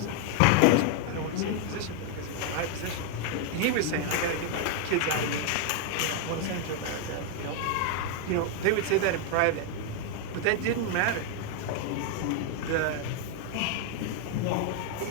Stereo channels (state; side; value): different; both; correlation 0.00